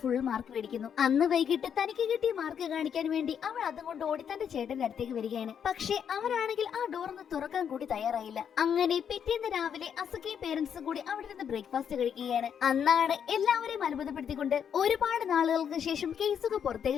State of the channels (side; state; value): right; quieter; 8.1 dB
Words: മാർക്ക് മേടിക്കുന്നു. അന്ന് വൈകിട്ട് തനിക്ക് കിട്ടിയ മാർക്ക് കാണിക്കാൻ വേണ്ടി അവൾ അതുകൊണ്ട് ഓടി തന്റെ ചേട്ടന്റെ അടുത്തേക്ക് വരികയാണ്. പക്ഷെ അവരാണെങ്കിൽ ആ ഡോർ ഒന്ന് തുറക്കാൻ കൂടി തയ്യാറായില്ല. അങ്ങനെ പിറ്റേന്ന് രാവിലെ അസുഖയും പേരൻസും കൂടി അവിടെ നിന്ന് ബ്രേക്ക്ഫാസ്റ്റ് കഴിക്കുകയാണ്. അന്നാണ് എല്ലാവരെയും അത്ഭുതപ്പെടുത്തിക്കൊണ്ട് ഒരുപാട് നാളുകൾക്ക് ശേഷം കേസുക